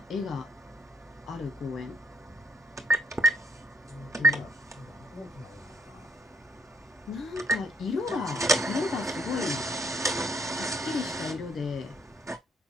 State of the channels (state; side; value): normal; both; correlation 0.70